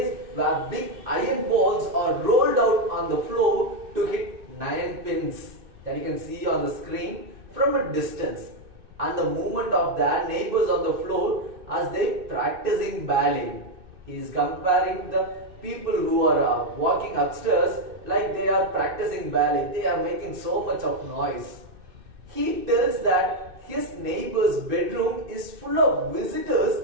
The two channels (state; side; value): late; left; 2.6 ms